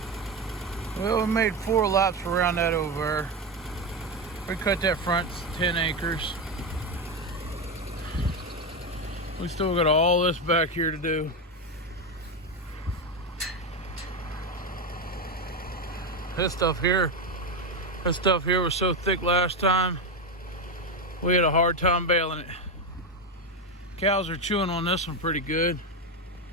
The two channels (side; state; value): both; normal; correlation 0.12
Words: Well, we made 4 laps around that over. We cut that front 10 acres. We still got all this back here to do. This stuff here was so thick last time, we had a hard time baling it. Cows are chewing on this one pretty good.